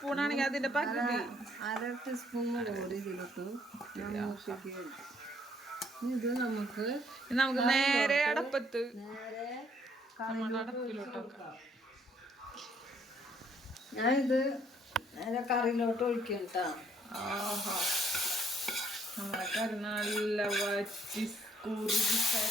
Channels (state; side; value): normal; both; correlation 0.66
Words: ആണെങ്കിൽ അതിന്റെ പകുതി 1/2 ടീസ്പൂൺ മുളക് പൊടി ഇതിലിട്ടു. ഇത് നമുക്ക് നേരെ അടപ്പത്ത് ഞാനിത് നേരെ കറിയിലോട്ട് ഒഴിക്കും കേട്ടോ. നമ്മളെ കറി നല്ല വറ്റി കുറുകി